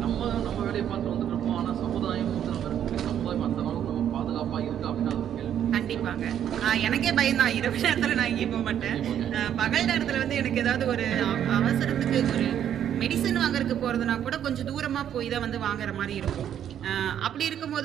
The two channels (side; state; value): left; quieter; 9.9 dB